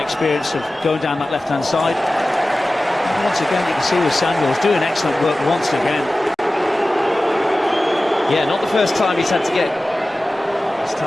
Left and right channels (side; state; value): both; normal; correlation 0.96